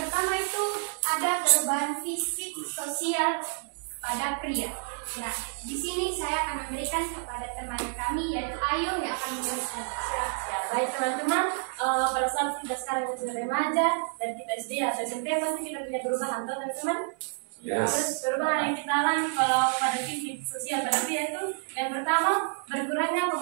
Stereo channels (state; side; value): silent; left; 59 dB below the other